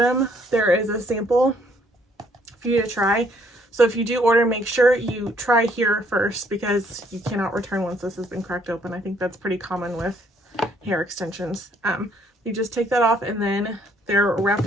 there is a sample for you to try. So if you do order, make sure you try here first, because you cannot return once this has been cracked open. I think that's pretty common with hair extensions. You just take that off, and then they're wrapped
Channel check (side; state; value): both; normal; correlation 0.66